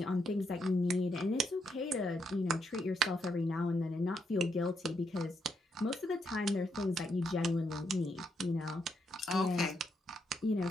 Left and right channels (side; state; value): both; normal; correlation 0.79